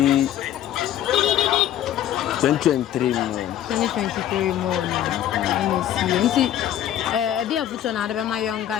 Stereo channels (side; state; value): right; quieter; 11.5 dB